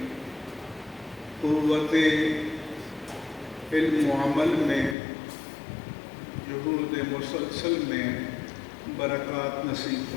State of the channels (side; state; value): right; drops out; at 5.0 s